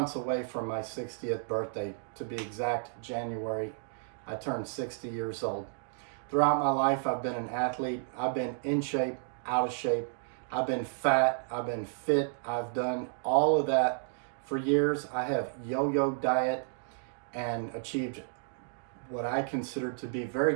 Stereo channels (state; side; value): silent; left; digital silence